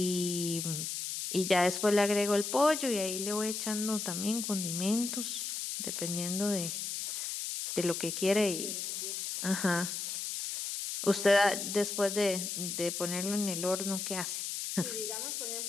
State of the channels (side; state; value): left; noise; hiss, 4 dB below the sound